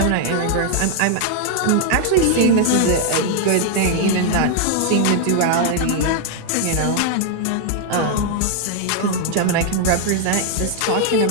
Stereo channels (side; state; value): both; different; correlation 0.00